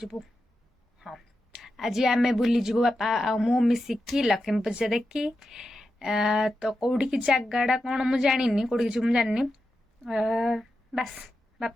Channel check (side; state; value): both; normal; correlation 0.89